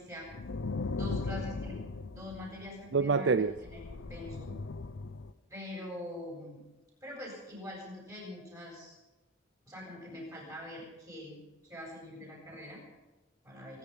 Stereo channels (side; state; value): both; normal; correlation 0.15